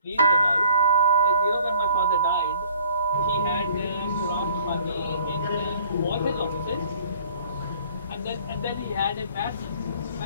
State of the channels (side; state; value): both; inverted; correlation -0.55